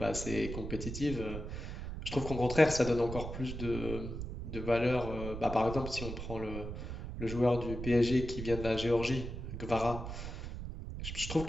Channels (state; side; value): noise; right; rumble, 7 dB below the sound